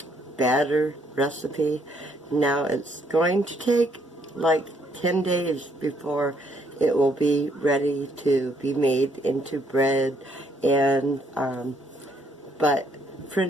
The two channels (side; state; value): both; normal; correlation 0.69